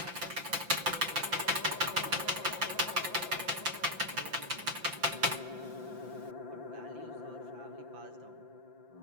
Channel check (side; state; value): left; late; 5.8 ms